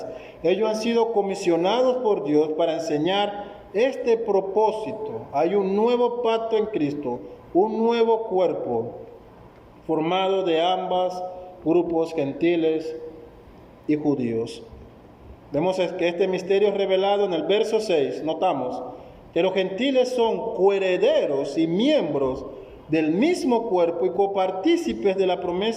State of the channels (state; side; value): identical; both; correlation 1.00